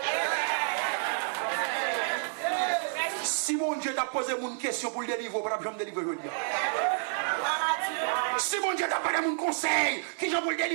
Si mon Dieu t'a posé une question pour le délivrer, pour ne me délivrer aujourd'hui. Si mon Dieu t'a pas donné mon conseil, qui j'en pour le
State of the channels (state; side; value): silent; left; 55 dB below the other